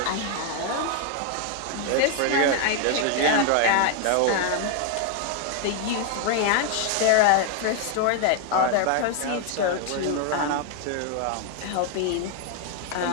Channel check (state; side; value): different; both; correlation 0.00